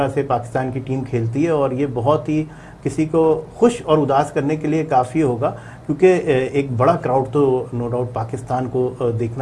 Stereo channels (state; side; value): identical; both; correlation 1.00